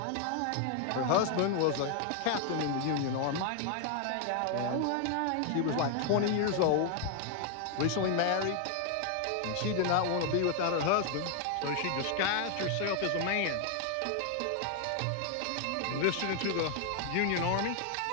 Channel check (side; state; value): both; different; correlation 0.00